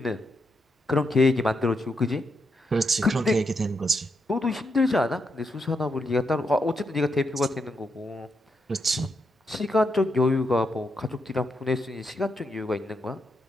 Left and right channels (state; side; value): normal; both; correlation 0.82